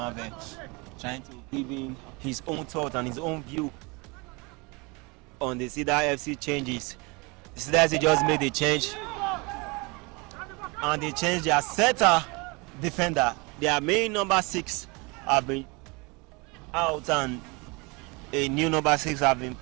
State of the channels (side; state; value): left; quieter; 27.8 dB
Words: trying to give in his own thought and his own view on the Cedar FC changes. The Cedars FC just made a change, and they changed their setter defender. Their main number 6 have been out, and a new number 6 have been